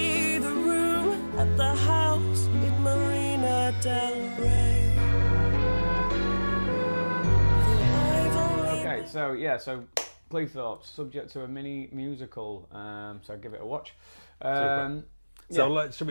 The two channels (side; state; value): both; inverted; correlation -1.00